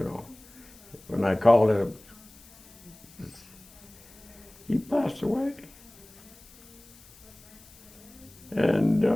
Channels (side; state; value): left; noise; hiss, 23 dB below the sound